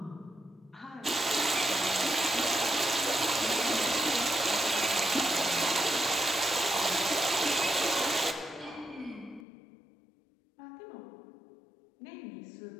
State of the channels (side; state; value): right; drops out; at 9.5 s